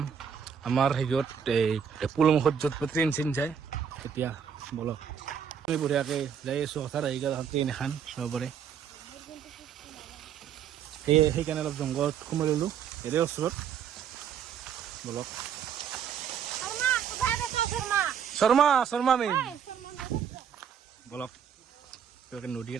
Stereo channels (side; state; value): left; quieter; 7.9 dB